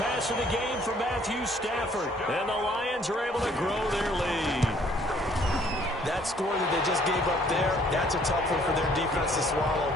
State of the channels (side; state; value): both; normal; correlation 0.61